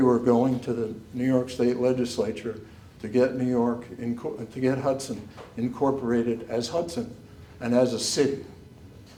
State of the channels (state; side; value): identical; both; correlation 1.00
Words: were going to the New York State Legislature to get Hudson incorporated as Hudson and as a city.